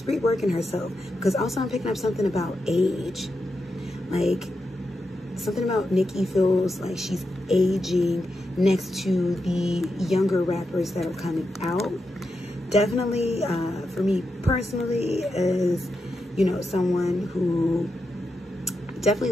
reworking herself. Because also I'm picking up something about age. Like, something about Nicki feels like she's aging next to the younger rappers that are coming out. Definitely, for me personally, as, you know, someone who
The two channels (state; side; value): normal; both; correlation 0.87